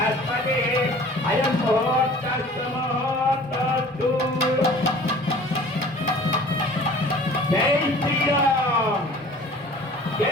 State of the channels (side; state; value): both; normal; correlation 0.47